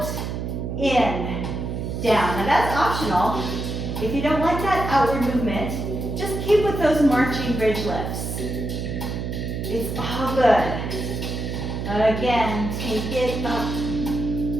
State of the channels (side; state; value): right; noise; hum, 4 dB below the sound